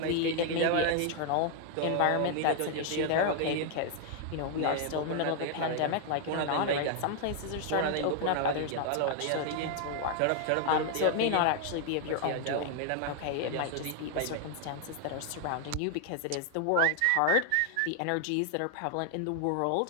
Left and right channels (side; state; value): both; different; correlation 0.00